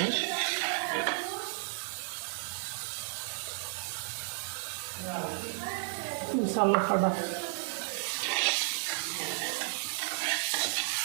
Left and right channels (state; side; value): silent; left; 56 dB below the other